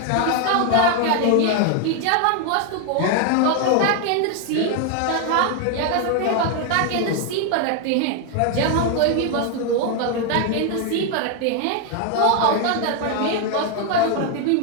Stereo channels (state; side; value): different; both; correlation 0.01